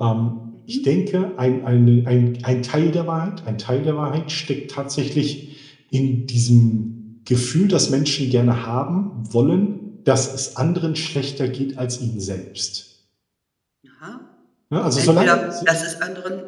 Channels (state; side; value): identical; both; correlation 1.00